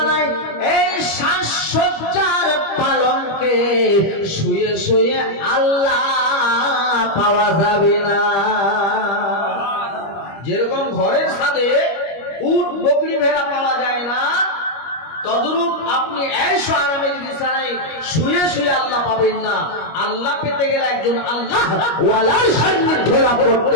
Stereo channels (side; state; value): right; late; 25 ms